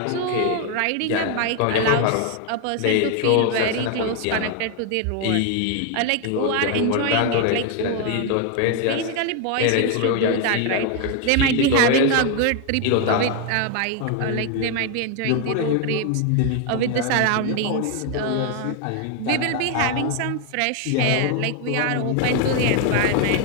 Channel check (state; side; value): different; both; correlation 0.01